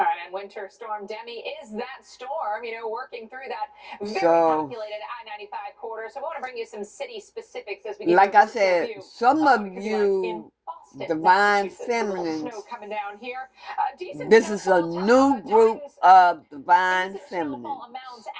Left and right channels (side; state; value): both; identical; correlation 1.00